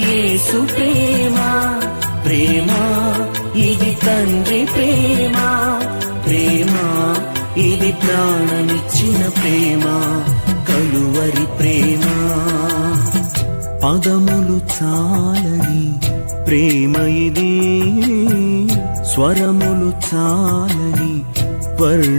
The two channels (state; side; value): inverted; both; correlation -1.00